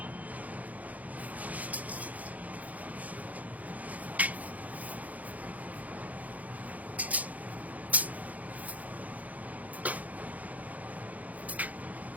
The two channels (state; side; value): late; left; 0.076 ms